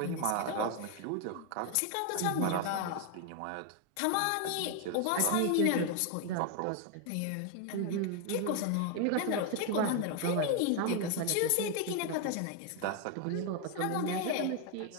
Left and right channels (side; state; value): both; different; correlation 0.01